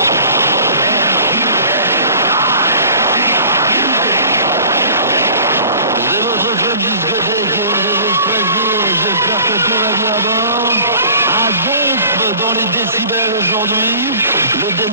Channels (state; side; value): inverted; both; correlation -0.46